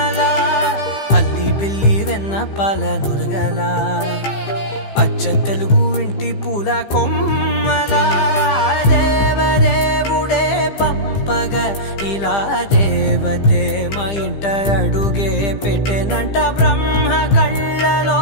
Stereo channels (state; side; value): late; right; 15 ms